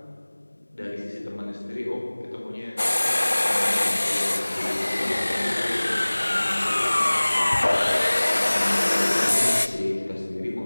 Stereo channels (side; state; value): both; inverted; correlation -1.00